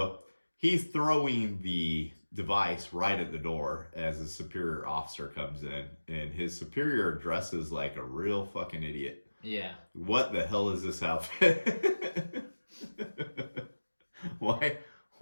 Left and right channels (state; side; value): inverted; both; correlation -1.00